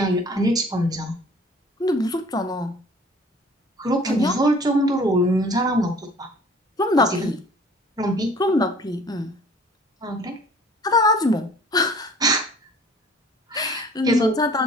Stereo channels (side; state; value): both; normal; correlation 0.51